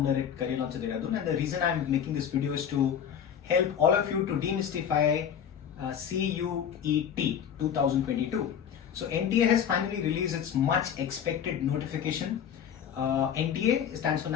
at Career Launcher Dehradun, and the reason I'm making this video is to help all of you to demystify CUET 2022. So NTA has finally released its much expected notification. NTA stands for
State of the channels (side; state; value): right; quieter; 8.4 dB